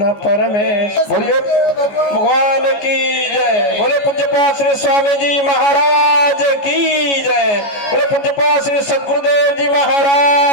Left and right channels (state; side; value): late; right; 14 ms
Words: परमेश्वर। बोलिए भगवान की जय। बोले पूज्यपाद श्री स्वामी जी महाराज की जय। बोले पूज्यपाद श्री सद्गुरुदेव जी